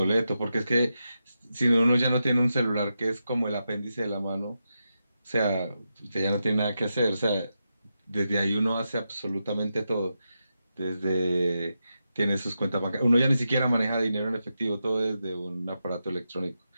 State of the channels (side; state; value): both; inverted; correlation -0.88